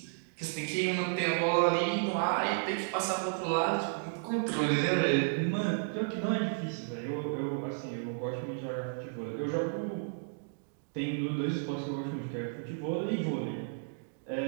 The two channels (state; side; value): silent; left; digital silence